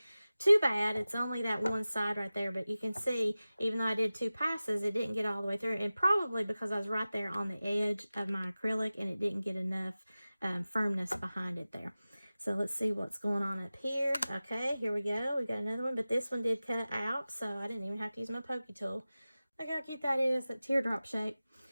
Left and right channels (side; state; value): both; inverted; correlation -0.96